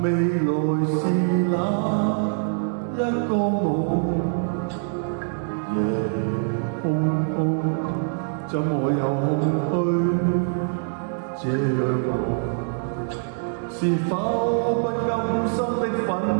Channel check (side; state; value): left; silent; 63 dB below the other